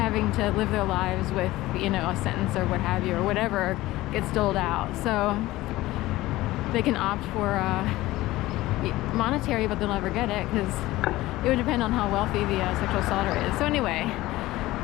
to live their lives with, a sentence or what have you, or whatever gets doled out. So they can opt for monetary, but they'll never get it because it would depend on how wealthy the sexual assaulter is. So anyway,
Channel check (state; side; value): quieter; right; 17.6 dB